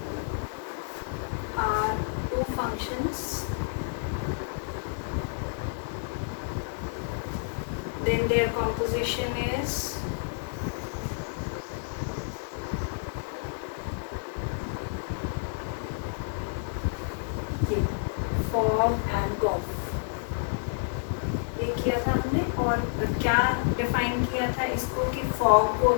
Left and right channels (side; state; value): right; silent; digital silence